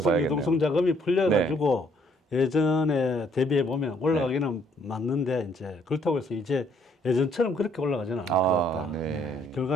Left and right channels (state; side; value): normal; both; correlation 0.66